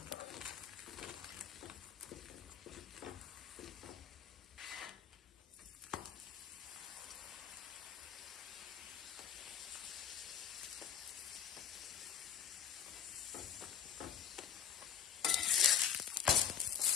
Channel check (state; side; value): quieter; right; 8.6 dB